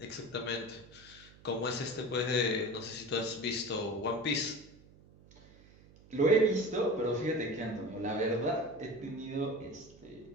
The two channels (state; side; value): noise; right; hum, 24 dB below the sound